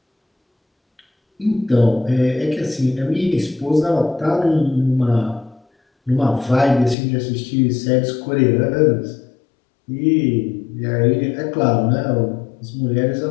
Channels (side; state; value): right; drops out; at 7.0 s